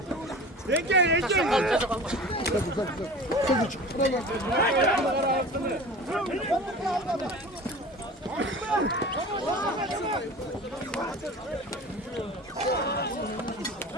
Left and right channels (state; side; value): normal; both; correlation 0.37